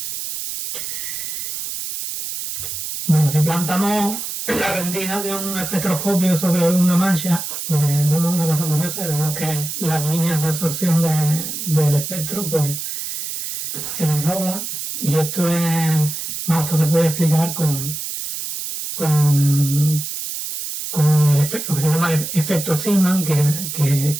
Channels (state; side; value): noise; right; hiss, 6 dB below the sound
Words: Bueno, si plantamos la rendija de un espectroscopio sobre una mancha, pues vemos una cosa curiosa, vemos que las líneas de absorción del espectro pues se desdoblan, y esto es esto se puede explicar con lo que se llama efecto Zeeman, que